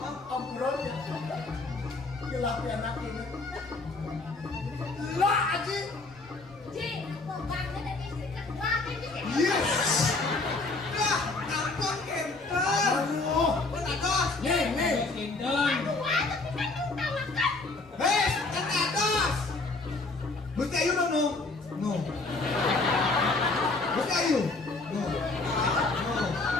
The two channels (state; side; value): quieter; right; 3.4 dB